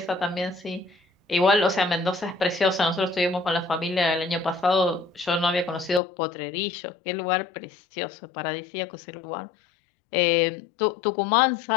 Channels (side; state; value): right; drops out; at 6.0 s